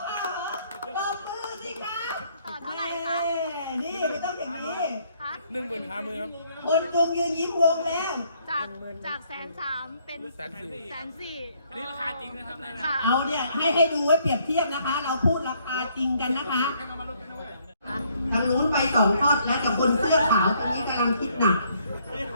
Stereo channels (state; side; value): inverted; both; correlation -0.67